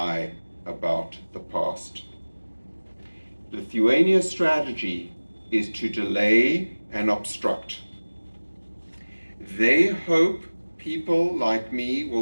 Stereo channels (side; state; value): both; inverted; correlation -1.00